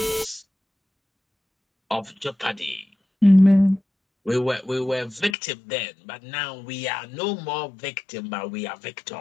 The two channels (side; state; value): right; drops out; at 5.4 s